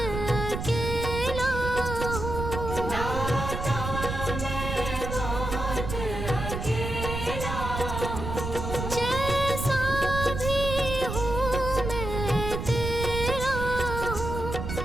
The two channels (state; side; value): noise; right; rumble, 5 dB below the sound